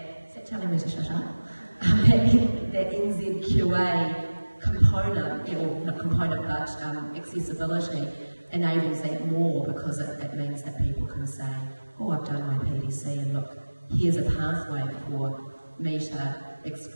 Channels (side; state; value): both; inverted; correlation -1.00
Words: is that telling me to shut up? that NZQA component, or not component, but accessibility enables that more, because it means that people can say, oh, I've done my PDC and look, here's a pathway for me to